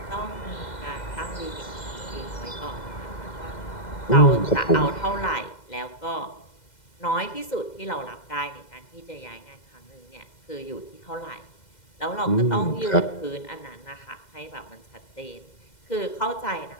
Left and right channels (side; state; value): right; late; 2.0 ms